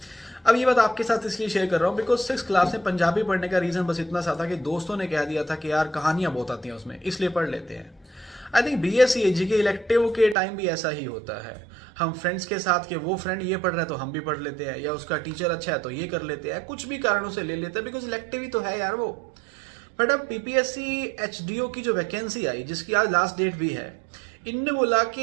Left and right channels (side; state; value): left; drops out; at 10.4 s